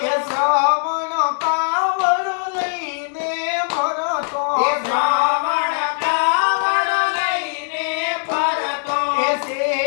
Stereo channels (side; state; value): right; silent; 61 dB below the other